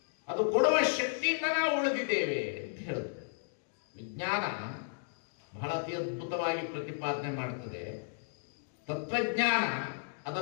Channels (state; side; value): silent; right; digital silence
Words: ಅದು ಕೊಡುವ ಶಕ್ತಿಯಿಂದ ನಾವು ಉಳಿದಿದ್ದೇವೆ ಅಂತ ಹೇಳಿದ್ರು. ವಿಜ್ಞಾನ ಬಹಳ ಅತಿ ಅದ್ಭುತವಾಗಿ ಪ್ರತಿಪಾದನೆ ಮಾಡ್ತದೆ. ತತ್ವಜ್ಞಾನ